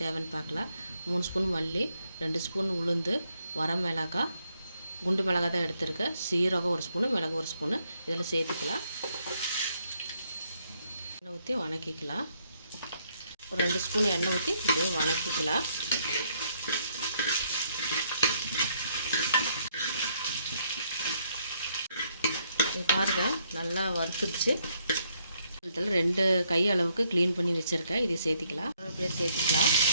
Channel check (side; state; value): both; inverted; correlation -0.72